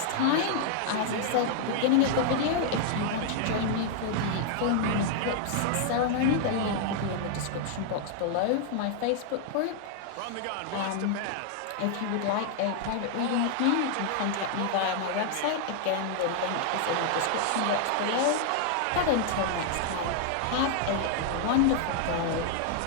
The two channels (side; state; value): both; different; correlation 0.00